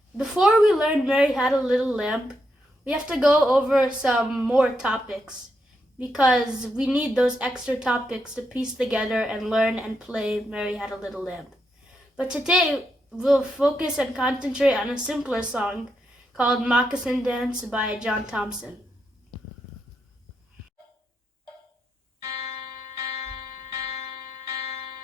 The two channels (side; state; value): both; normal; correlation 0.82